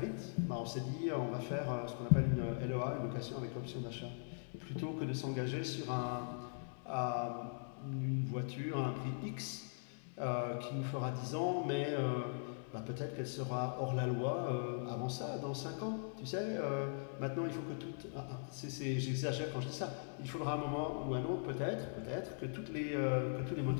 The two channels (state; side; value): silent; right; 51 dB below the other